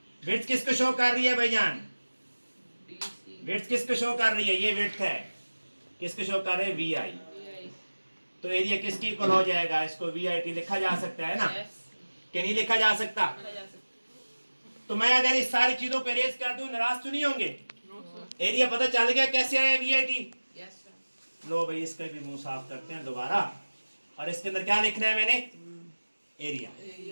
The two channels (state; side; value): inverted; both; correlation -1.00